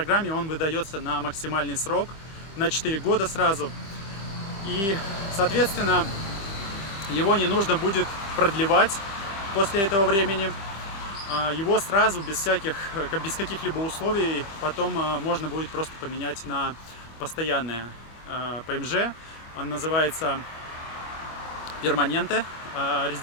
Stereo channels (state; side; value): late; right; 25 ms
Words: он выдается на максимальный срок, на 4 года сразу. И, соответственно, его не нужно будет продлевать после этого времени. Его сразу, без каких-либо условий, потом можно будет просто поменять на постоянное ПМЖ. Он называется Перманенте,